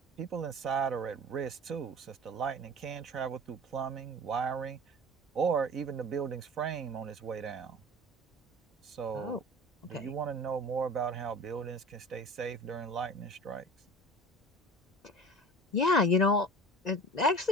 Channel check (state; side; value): normal; both; correlation 0.38